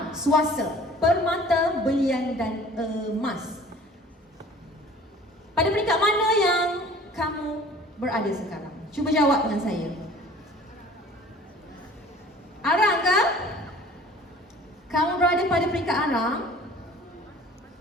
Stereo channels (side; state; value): both; normal; correlation 0.48